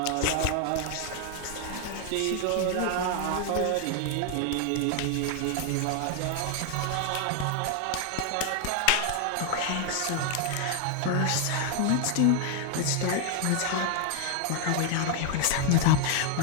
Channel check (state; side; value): different; both; correlation 0.00